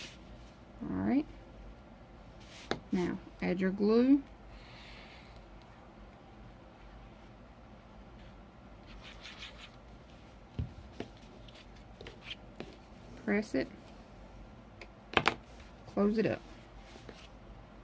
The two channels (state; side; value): identical; both; correlation 1.00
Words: Alright, now add your glue. Press it, close it up.